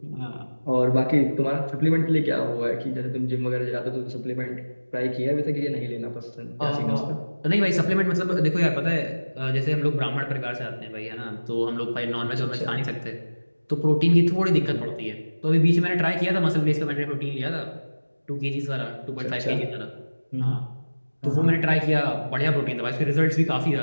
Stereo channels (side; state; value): both; inverted; correlation -1.00